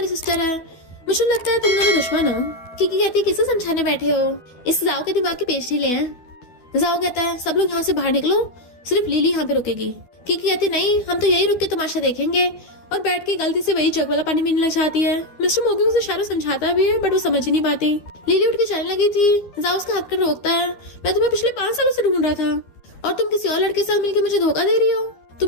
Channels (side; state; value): right; late; 12 ms